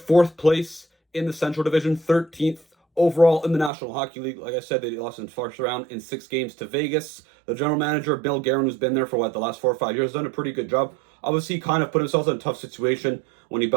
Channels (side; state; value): left; drops out; at 3.7 s